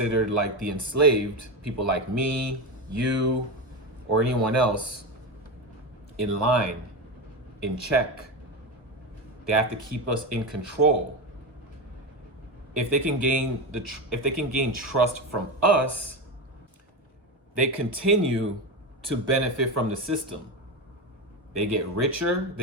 like the enslaved, people like me, you, or anyone else, in line, in check. They have to keep us in control. If they can gain trust from us, they continue to benefit from the system. They get richer,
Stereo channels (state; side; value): normal; both; correlation 0.17